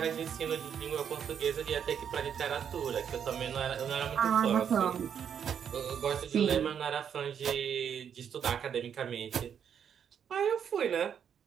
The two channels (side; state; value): left; quieter; 8.1 dB